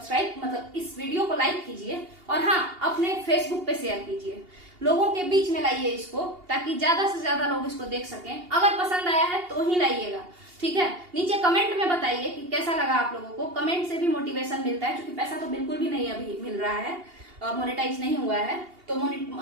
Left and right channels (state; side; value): late; left; 2.8 ms